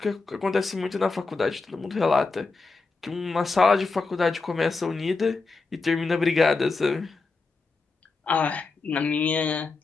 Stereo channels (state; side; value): quieter; right; 4.0 dB